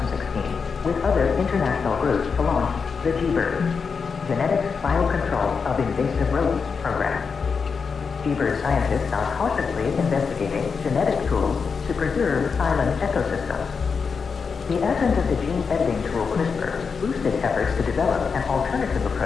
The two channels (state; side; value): quieter; right; 5.5 dB